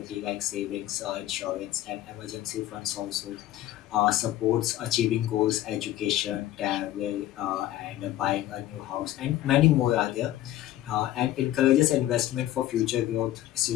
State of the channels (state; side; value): quieter; right; 13.9 dB